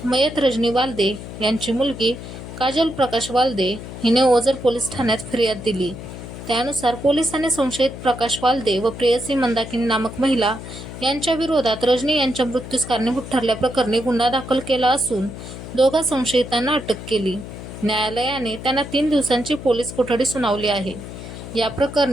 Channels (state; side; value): noise; left; hum, 11 dB below the sound